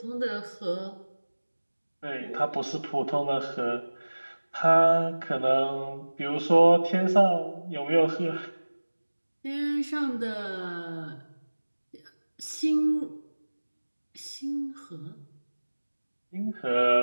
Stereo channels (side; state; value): both; inverted; correlation -1.00